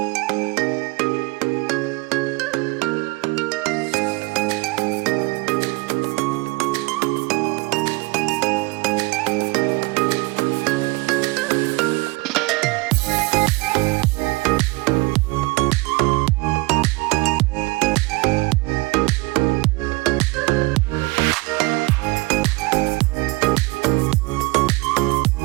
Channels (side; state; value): left; quieter; 23.6 dB